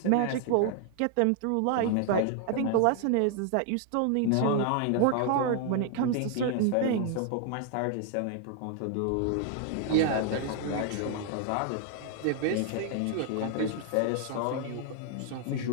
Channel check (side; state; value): both; different; correlation 0.00